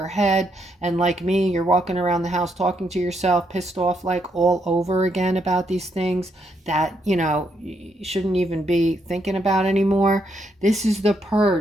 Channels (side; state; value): both; normal; correlation 0.77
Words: head, and like me, you're walking around the house talking to yourself, pissed off like all over again about these things that, you shouldn't even be thinking about anymore. This is the